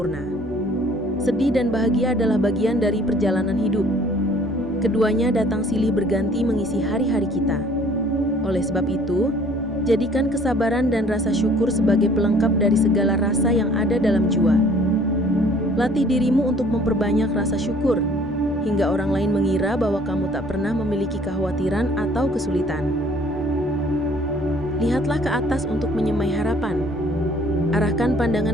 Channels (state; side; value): normal; both; correlation 0.56